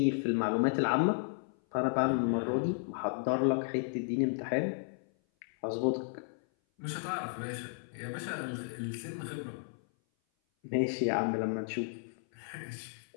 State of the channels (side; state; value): right; silent; 55 dB below the other